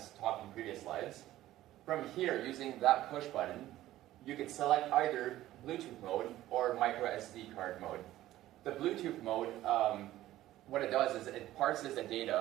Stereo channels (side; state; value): left; quieter; 14.7 dB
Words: talked in previous slides. From here, using that push button, you can select either Bluetooth mode or micro SD card mode. The Bluetooth mode, what it does is it parses the